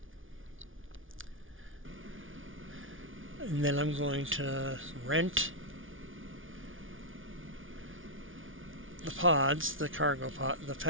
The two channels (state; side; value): late; left; 0.57 ms